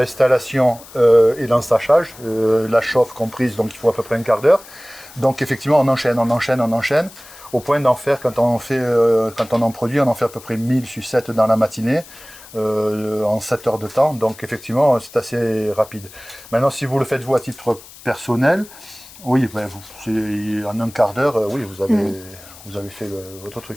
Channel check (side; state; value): left; noise; hiss, 20 dB below the sound